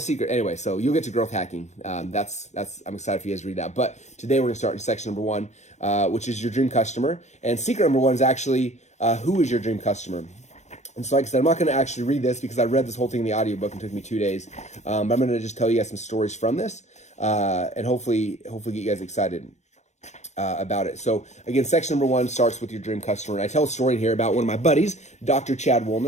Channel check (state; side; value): late; right; 0.33 ms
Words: Anyway, so you'll get to growth hacking. I'm excited for you guys to read that. But today we're going to start in section number 1, which is your dream customer. And secret number 1 is actually who is your dream customer? And so like I said, I'm not going to actually read this because I read this whole thing in the audiobook and it took me 2 days. But I'm going to just tell you guys some stories from this and hopefully get you guys excited about it. So again, section number 1 starts with your dream customer. And I tell a story here about one of my buddies, Dr. Chad